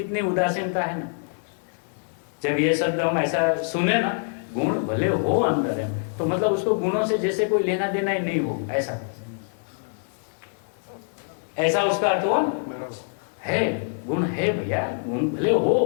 उदासीनता है ना। जब ये शब्द हम ऐसा सुने ना, गुण भले हो अंदर है, तो मतलब उसको गुणों से जैसे कोई लेना देना ही नहीं हो, ऐसा उसका अर्थ हुआ ना। है, गुण है भैया, गुण भले हो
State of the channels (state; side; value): silent; right; 62 dB below the other